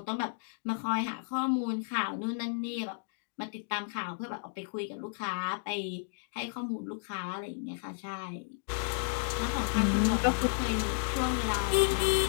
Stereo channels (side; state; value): right; silent; digital silence